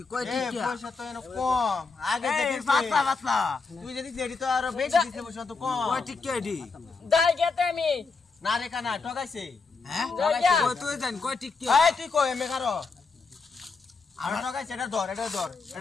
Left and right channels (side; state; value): right; quieter; 4.5 dB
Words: কয় এ টিকা পয়সা তো এনো কম আগে যে এই দিছে পাতলা পাতলা তুই যদি দেড়ি তো আরো বেশি দিছে পয়সা তো কম কয় টিকা দি দাই গেতে আমি না রে কানা ঠগাইছে হ্যাঁ দাইয়া কয় তুই জান কয় টিকা এই তুই কই এমে কারো আমরা ঠগাইছে এটা ধর এটা